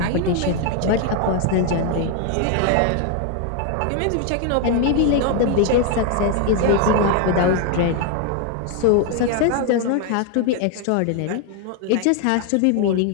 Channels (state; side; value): different; both; correlation 0.01